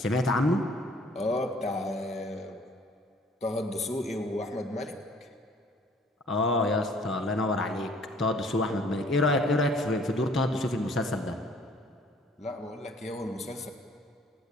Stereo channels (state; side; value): normal; both; correlation 0.57